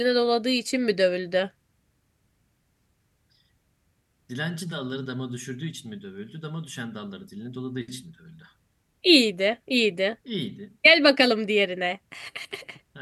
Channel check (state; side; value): identical; both; correlation 1.00